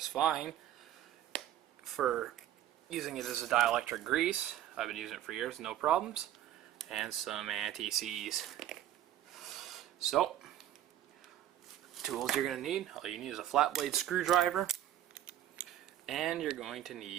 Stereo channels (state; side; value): quieter; left; 12.2 dB